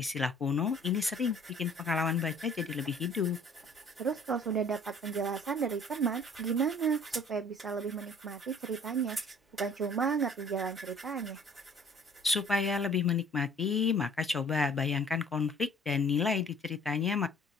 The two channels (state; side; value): normal; both; correlation 0.53